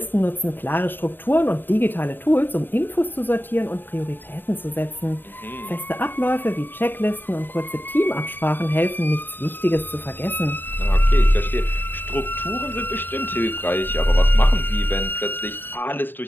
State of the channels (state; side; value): late; right; 0.094 ms